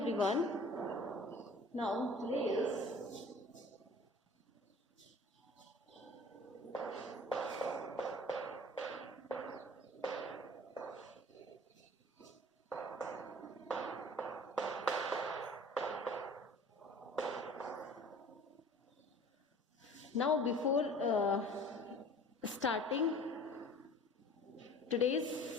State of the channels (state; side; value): normal; both; correlation 0.46